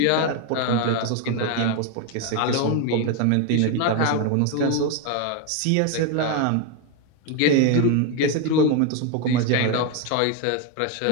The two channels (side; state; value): both; different; correlation 0.02